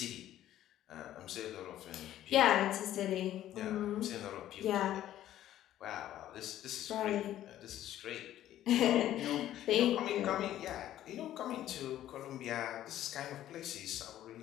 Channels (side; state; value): right; quieter; 12.7 dB